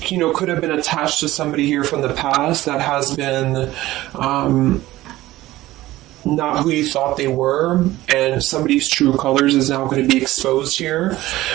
know, could have been attached to somebody here from the past that has been not who you thought they were, and somebody's true colors is now going to be exposed here.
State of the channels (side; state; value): left; quieter; 16.6 dB